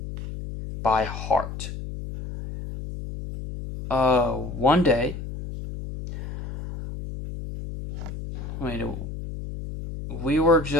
by heart. One day, we were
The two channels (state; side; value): noise; left; hum, 8 dB below the sound